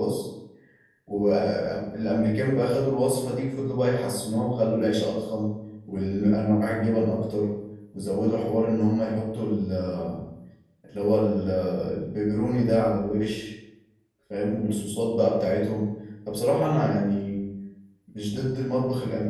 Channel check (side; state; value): both; identical; correlation 1.00